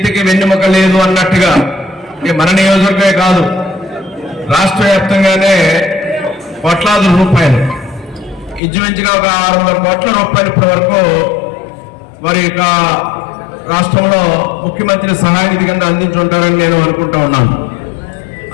వెన్నెముక లేదు అన్నట్టుగా మన నియోజకవర్గమే కాదు రాష్ట్ర వ్యాప్తంగానే కోట్లాది రూపాయలు ఇంచుమించుగా ఒక 600 కోట్ల రూపాయలు ఇప్పటి వరకు వారి యొక్క రాష్ట్రంలో ముఖ్యమంత్రి సహాయ నిధి కింద అందించుంటారని నేను అనుకుంటా ఉన్నాను.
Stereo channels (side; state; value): right; drops out; at 8.6 s